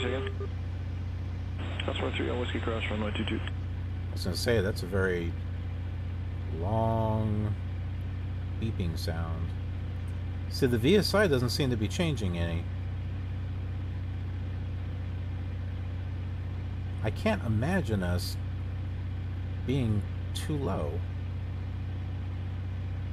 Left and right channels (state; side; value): identical; both; correlation 1.00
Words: second. Crossroad 3 on Whiskey Cross, runway 22. I was going to say, that's a very long beeping sound. See, the VSI doesn't seem to be changing any. I can't imagine us being too low.